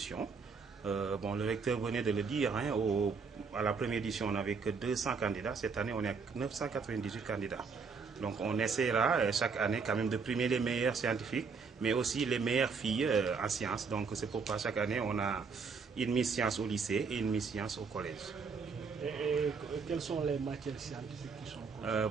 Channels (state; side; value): quieter; left; 5.2 dB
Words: Le recteur venait de le dire, à la première édition, on n'avait que 200 candidats. Cette année, on est à 998 candidats. Donc on essaiera chaque année quand même de primer les meilleurs scientifiques, mais aussi les meilleures filles en sciences. Donc c'est pourquoi chaque année, on a une Miss Science au lycée et une Miss Science au collège. Et quelles sont les matières scientifiques qui sont concernées?